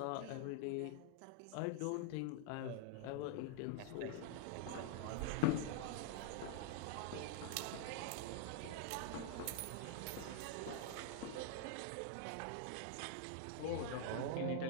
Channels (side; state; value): both; different; correlation -0.01